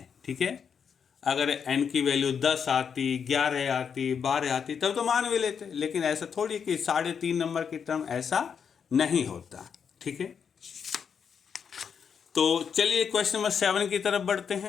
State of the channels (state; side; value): quieter; right; 6.9 dB